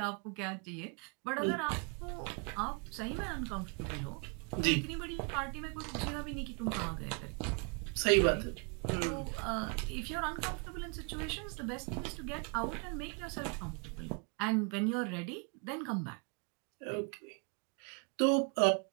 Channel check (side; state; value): left; quieter; 34.8 dB